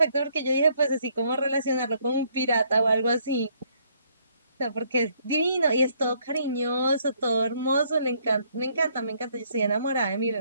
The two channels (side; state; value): both; inverted; correlation -0.68